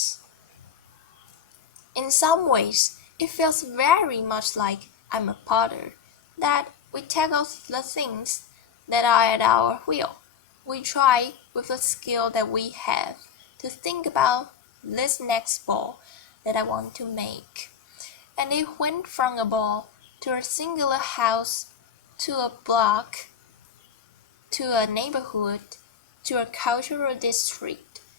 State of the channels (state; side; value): quieter; right; 7.5 dB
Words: In some ways, it feels very much like I'm a potter, that we tackle the things that are at our wheel. We try, with the skill that we have, to think about this next ball that I want to make. And it went from a ball to a singular house, to a block, to a neighborhood, to a cultural district,